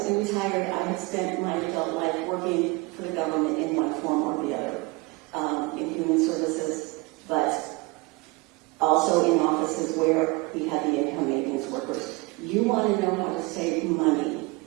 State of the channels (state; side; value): quieter; left; 24.2 dB